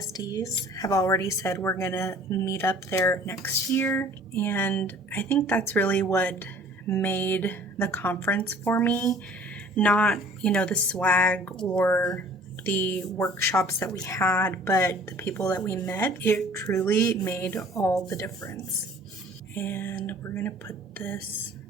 have already said we're gonna meet up there next year, and I think that's really what made the conference for me. Not, you know, the swag or the workshops that we had, but the people that we met. It truly made all the difference. And we're gonna put this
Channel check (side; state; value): both; normal; correlation 0.51